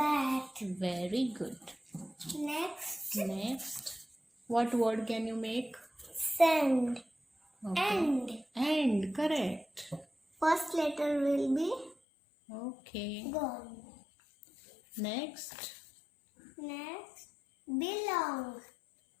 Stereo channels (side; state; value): right; drops out; at 12.0 s